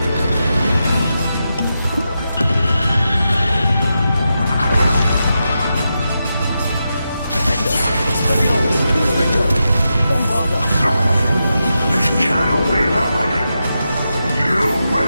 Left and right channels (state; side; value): inverted; both; correlation -0.88